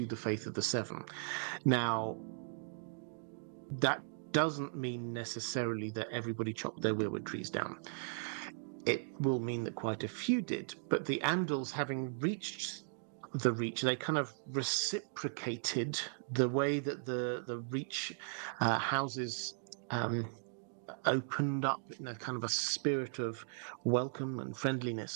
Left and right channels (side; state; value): left; silent; digital silence